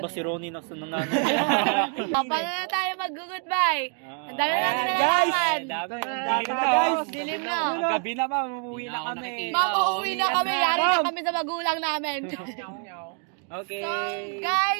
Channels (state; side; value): quieter; left; 39.4 dB